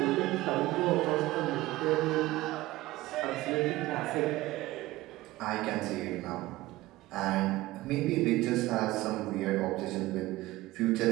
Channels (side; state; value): left; quieter; 18.1 dB